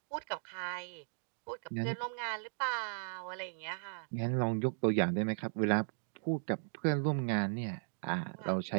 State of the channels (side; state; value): left; silent; digital silence